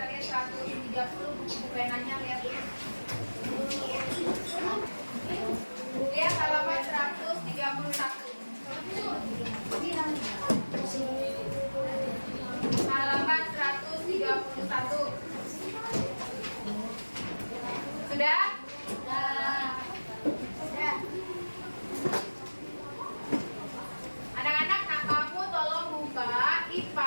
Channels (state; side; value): inverted; both; correlation -1.00